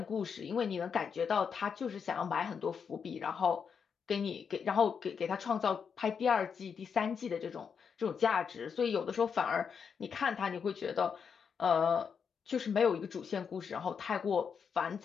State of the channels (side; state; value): right; quieter; 6.5 dB